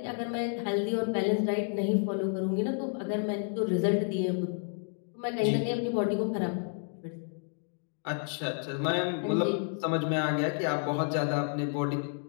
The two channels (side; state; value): right; silent; 57 dB below the other